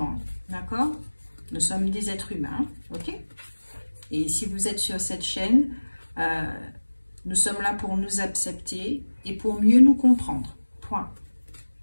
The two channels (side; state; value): both; inverted; correlation -1.00